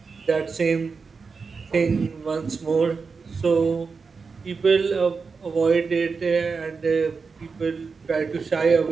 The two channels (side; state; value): left; quieter; 4.9 dB